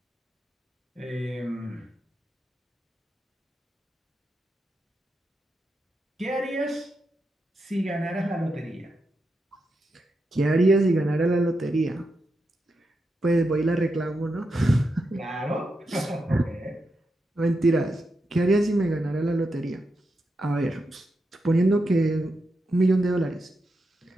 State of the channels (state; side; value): normal; both; correlation 0.86